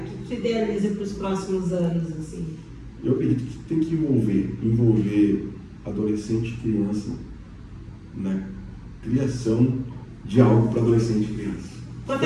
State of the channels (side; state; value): both; identical; correlation 1.00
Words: tu idealiza para os próximos anos, assim? Eu acredito que tem que envolver adolescente e criança na criação de algo para adolescente e criança.